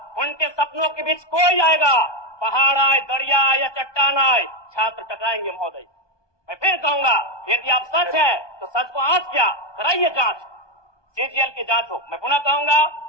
उनके सपनों के बीच कोई आएगा, पहाड़ आए, दरिया आए या चट्टान आए, छात्र टकराएंगे। महोदय मैं फिर कहूंगा, यदि आप सच है तो सच को आंच क्या कराइए जांच, सीजीएल की जांच हो। मैं पुनः कहूंगा,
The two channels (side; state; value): right; late; 1.2 ms